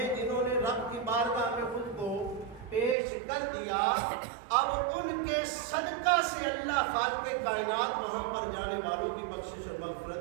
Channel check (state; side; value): drops out; left; at 3.0 s